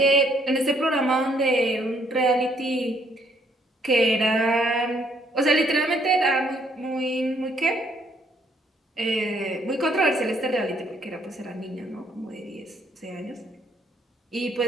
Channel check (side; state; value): both; normal; correlation 0.68